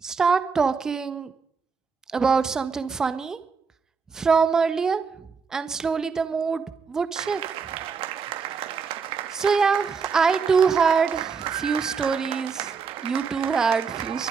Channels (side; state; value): left; quieter; 5.5 dB